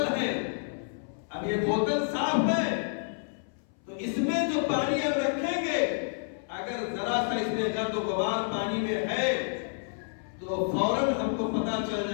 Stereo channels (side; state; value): right; silent; 58 dB below the other